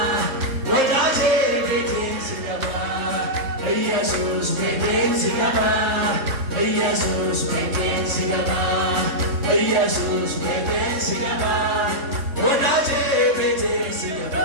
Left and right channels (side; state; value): left; late; 3.6 ms